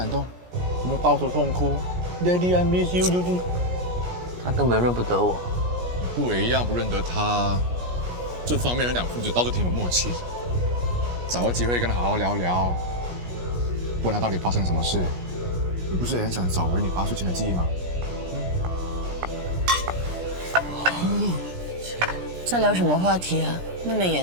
动？有没有抱头痛哭 ？Daddy, I miss you。他根本认不得我。不也一样不认得他？这方面两父子倒是挺有默契的。找个机会跟他好好聊聊，问他到底发生什么事。你不是也很想找回你8岁前的记忆吗？在聊什么话题啊？那么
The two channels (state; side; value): late; left; 17 ms